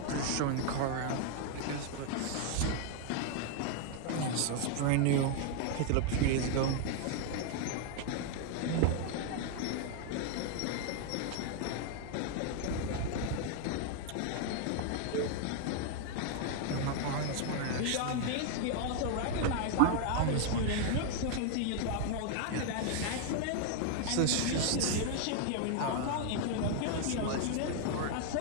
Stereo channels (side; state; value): both; different; correlation 0.00